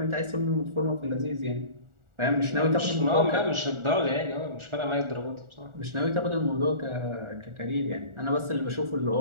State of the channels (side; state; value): left; late; 1.4 ms